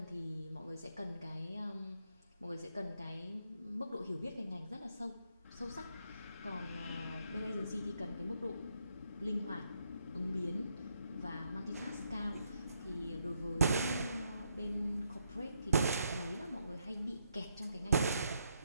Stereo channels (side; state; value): both; inverted; correlation -0.77